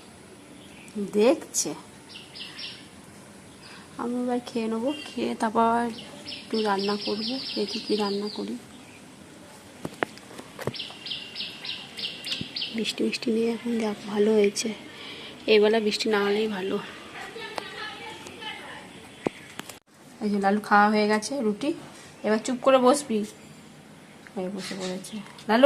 দেখছে। আমি এবার খেয়ে নেবো, খেয়ে তারপর একটু রান্না করবো, দেখি কি রান্না করি। বৃষ্টি বৃষ্টি নিয়ে এখন যাক, ভালো হয়েছে। এবেলা বৃষ্টি না হলেই ভালো। এই যে লালু খাওয়া হয়ে গেছে রুটি, এবার চুপ করে বসবি। বসে পড়েছে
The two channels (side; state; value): both; identical; correlation 1.00